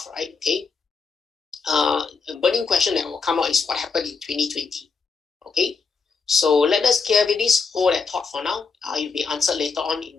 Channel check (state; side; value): quieter; right; 4.9 dB